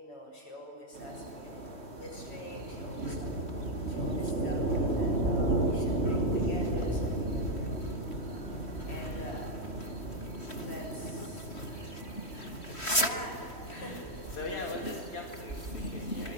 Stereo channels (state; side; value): late; right; 3.1 ms